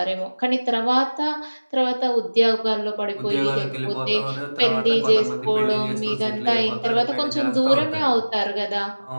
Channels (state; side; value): inverted; both; correlation -1.00